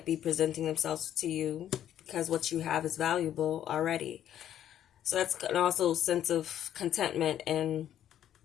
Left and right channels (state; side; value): quieter; right; 10.8 dB